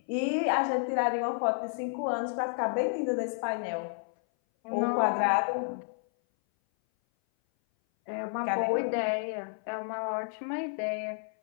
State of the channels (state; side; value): silent; right; 57 dB below the other